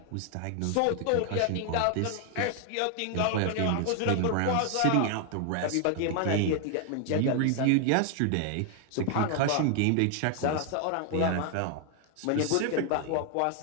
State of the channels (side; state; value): both; different; correlation 0.00